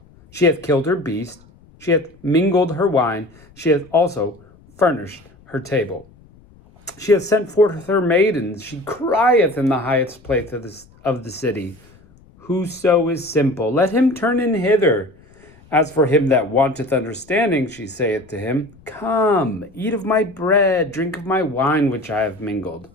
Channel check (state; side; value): noise; left; rumble, 27 dB below the sound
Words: She hath killed her beast, she hath mingled her wine, she hath also furnished her table. She hath sent forth her maidens, she crieth in the highest place of the city. Whoso is simple, let him turn in hither. As for him that wanteth understanding, she saith to him, Come, eat of my bread, drink of my wine which I have mingled.